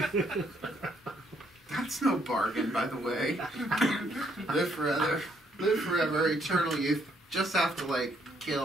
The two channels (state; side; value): normal; both; correlation 0.70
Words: That's no bargain, by the way. Live forever, eternal youth. Just have to, like,